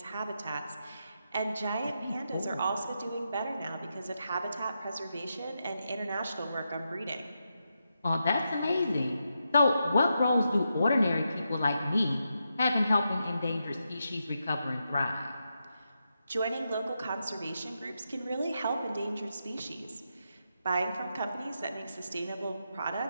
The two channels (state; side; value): inverted; both; correlation -0.85